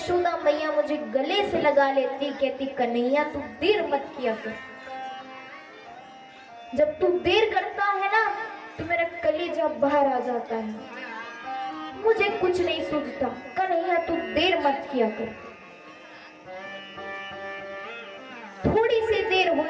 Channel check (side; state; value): both; identical; correlation 1.00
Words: मैया मुझे गले से लगा लेती, कहती कन्हैया तू देर मत किया कर। जब तू देर करता है ना तो मेरा कलेजा बाहर आ जाता है, मुझे कुछ नहीं सूझता। कन्हैया तू देर मत किया कर। थोड़ी सी देर